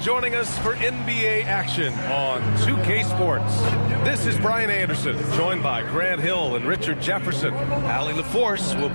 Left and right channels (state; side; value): inverted; both; correlation -1.00